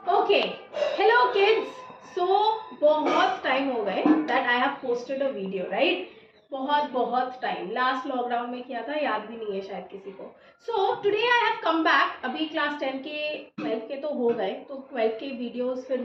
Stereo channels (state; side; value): identical; both; correlation 1.00